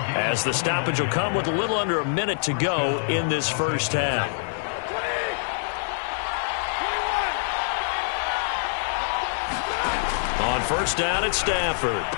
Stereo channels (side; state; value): right; silent; 62 dB below the other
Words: as the stoppage will come with a little under a minute to go in this first half. On first down, it's Stafford.